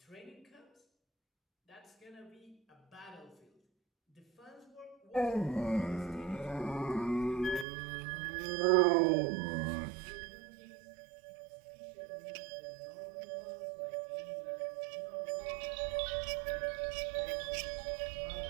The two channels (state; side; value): drops out; left; at 7.7 s